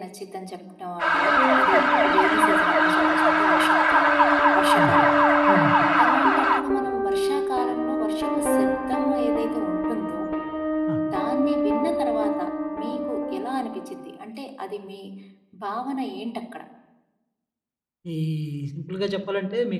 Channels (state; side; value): identical; both; correlation 1.00